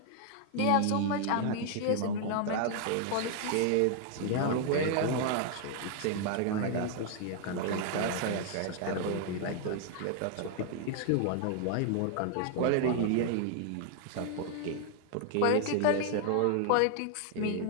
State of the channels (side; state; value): both; different; correlation 0.00